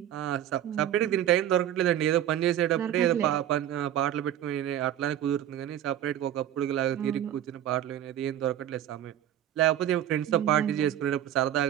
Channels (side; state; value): left; quieter; 11.3 dB